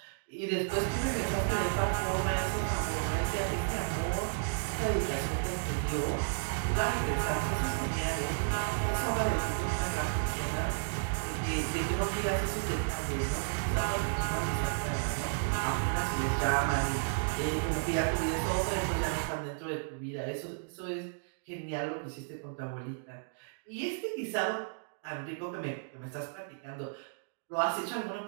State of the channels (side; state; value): left; silent; digital silence